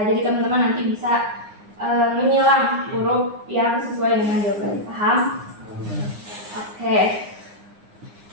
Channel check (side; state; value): left; late; 9.7 ms